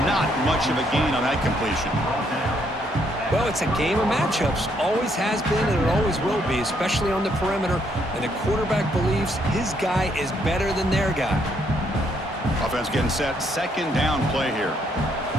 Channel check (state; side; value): normal; both; correlation 0.72